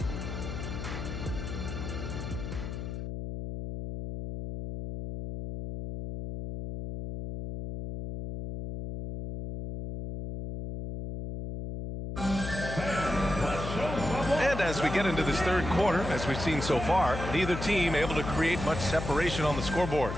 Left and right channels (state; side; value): noise; left; hum, 6 dB below the sound